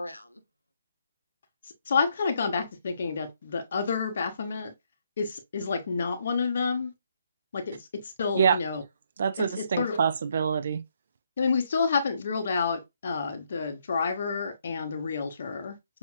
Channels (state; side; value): inverted; both; correlation -0.73